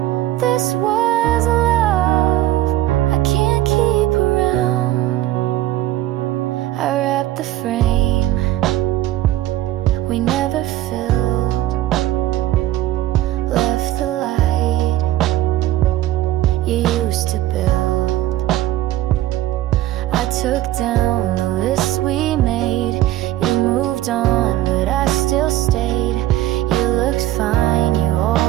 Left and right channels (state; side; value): quieter; left; 14.6 dB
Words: used to build. I took down the list we made. You moved on, but I still stayed. You looked fine, you